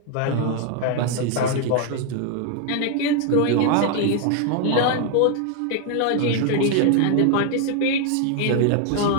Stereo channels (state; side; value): different; both; correlation 0.00